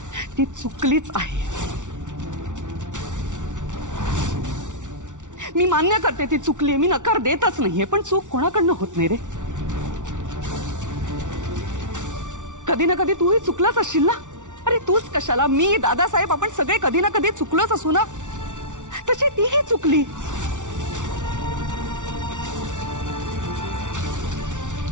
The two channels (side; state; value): left; late; 0.86 ms